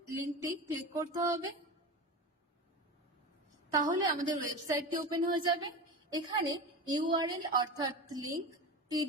লিঙ্কটি ক্লিক করতে হবে, তাহলে আমাদের ওয়েবসাইটটি ওপেন হয়ে যাবে। এখানে ইউআরএল অর্থাৎ লিঙ্ক,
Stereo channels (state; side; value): normal; both; correlation 0.26